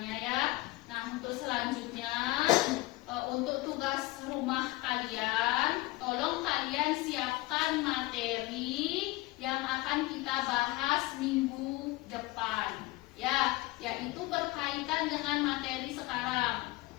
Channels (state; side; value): quieter; right; 20.2 dB